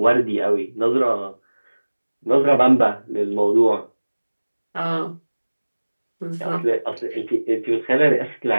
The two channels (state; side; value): inverted; both; correlation -1.00